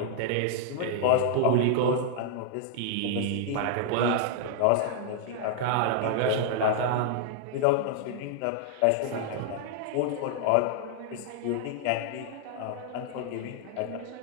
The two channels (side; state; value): both; different; correlation -0.01